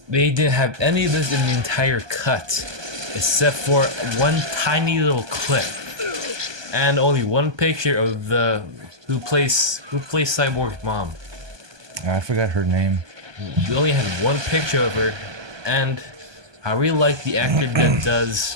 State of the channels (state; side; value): late; left; 1.2 ms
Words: They didn't have any of this in the entire cut, except for one tiny little clip, and only one picture of the who plays Cyborg's mom. I forgot her name. You only had one picture of her, and I really like the actor that does